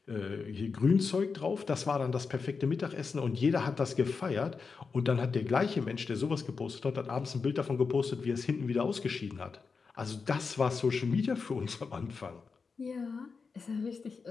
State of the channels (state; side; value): quieter; right; 5.0 dB